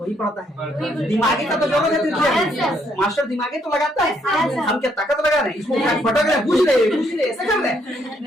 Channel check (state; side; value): normal; both; correlation 0.71